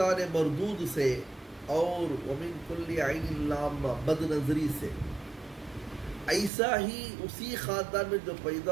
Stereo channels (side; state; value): left; drops out; at 6.5 s